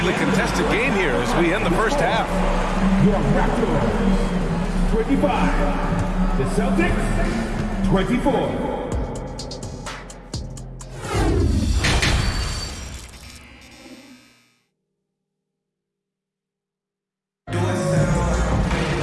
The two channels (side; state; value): both; identical; correlation 1.00